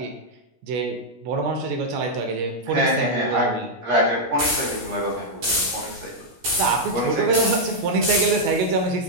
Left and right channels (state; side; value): late; left; 17 ms